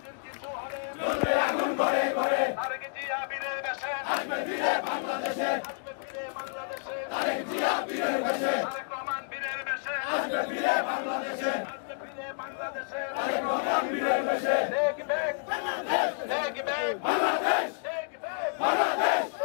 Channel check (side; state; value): right; silent; digital silence